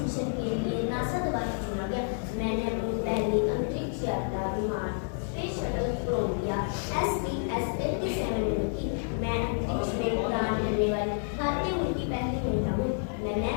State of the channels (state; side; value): silent; right; digital silence